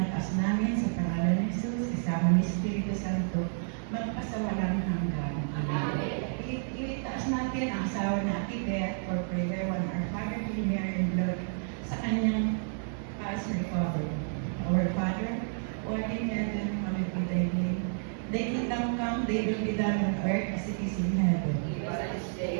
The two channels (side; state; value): left; silent; 58 dB below the other